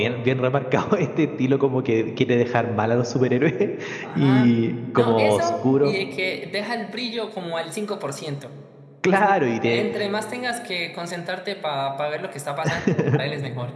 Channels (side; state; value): both; identical; correlation 1.00